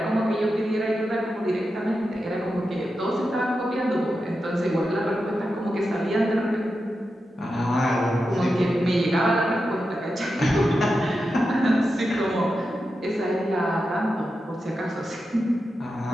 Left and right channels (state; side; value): normal; both; correlation 0.89